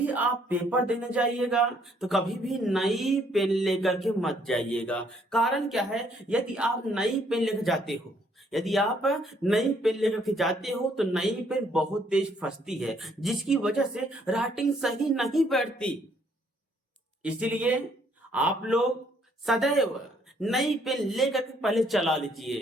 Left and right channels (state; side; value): normal; both; correlation 0.67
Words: आप पेपर देने जाइएगा तो कभी भी नई पेन लेकर के मत जाइएगा। कारण क्या है, यदि आप नई पेन लेकर जाते हो, यदि आप नई पेन लेकर के जाते हो तो नई पेन बहुत तेज फंसती है, जिसकी वजह से राइटिंग सही नहीं बैठती। इसीलिए आप लोग सदैव नई पेन लेकर के पहले चला